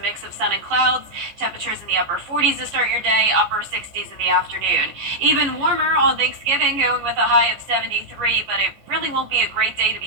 of sun and clouds. Temperatures in the upper 40s to start your day, upper 60s in the afternoon. Even warmer on Thanksgiving, going with a high of 73, but it really won't be a great day to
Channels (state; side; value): late; left; 14 ms